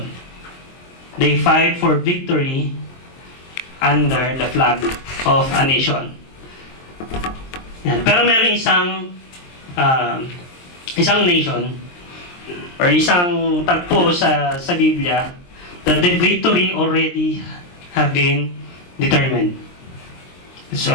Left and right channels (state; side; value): late; right; 23 ms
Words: They fight for victory under the flag of a nation. Yan. Pero meron isang nation or isang tagpo sa Biblia that the victory already have been determined. It's